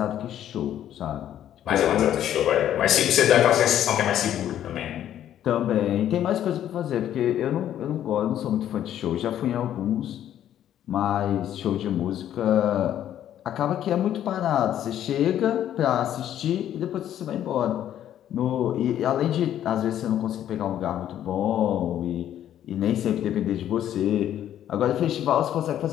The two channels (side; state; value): right; quieter; 11.1 dB